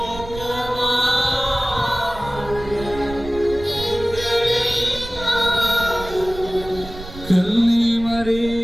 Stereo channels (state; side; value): noise; right; rumble, 13 dB below the sound